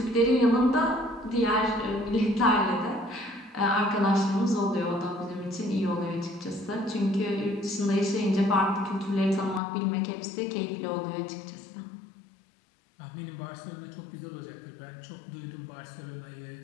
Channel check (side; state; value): right; drops out; at 9.6 s